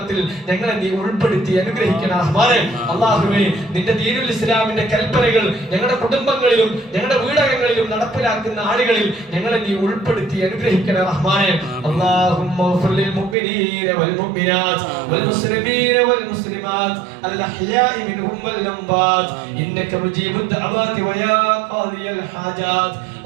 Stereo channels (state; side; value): drops out; left; at 13.4 s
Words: ഞങ്ങളെ നീ ഉൾപ്പെടുത്തി അനുഗ്രഹിക്കണേ റഹ്മാനെ. അല്ലാഹുവേ, നിന്റെ ദീനുൽ ഇസ്ലാമിന്റെ കൽപ്പനകൾ ഞങ്ങളുടെ കുടുംബങ്ങളിലും ഞങ്ങളുടെ വീടകങ്ങളിലും നടപ്പിലാക്കുന്ന ആളുകളിൽ ഞങ്ങളെ നീ ഉൾപ്പെടുത്തി അനുഗ്രഹിക്കണേ റഹ്മാനെ. അല്ലാഹുമ്മ ഗ്ഫിർ ലിൽ മുഅ്മിനീന വൽ മുഅ്മിനാത്ത് വൽ മുസ്ലിമീന വൽ മുസ്ലിമാത്ത് അൽ അഹ്യാഇ മിൻഹും വൽ അംവാത്ത് ഇന്നക മുജീബുദ് ദഅവാതി വയാ ഖാദിയൽ ഹാജാത്ത്.